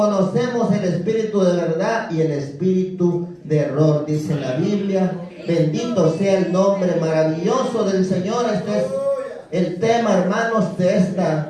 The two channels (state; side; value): identical; both; correlation 1.00